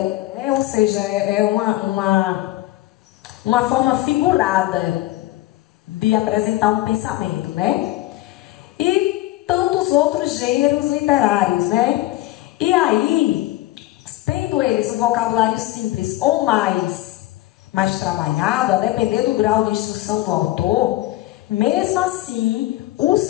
Ou seja, é uma forma figurada de apresentar um pensamento, né? E tantos outros gêneros literários, né? E aí, tendo eles um vocabulário simples ou mais trabalhado, a depender do grau de instrução do autor, mesmo assim, o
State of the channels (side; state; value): right; quieter; 17.1 dB